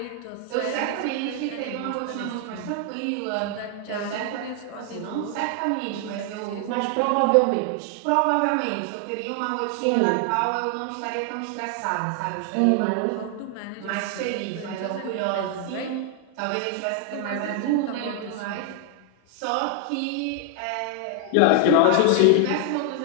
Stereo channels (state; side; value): different; both; correlation 0.00